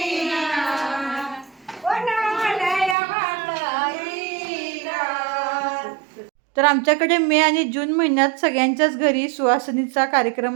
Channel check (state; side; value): drops out; left; at 3.0 s